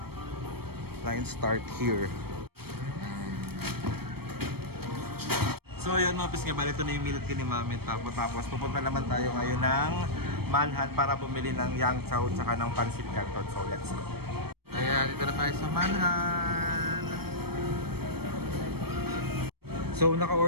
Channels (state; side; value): late; left; 0.96 ms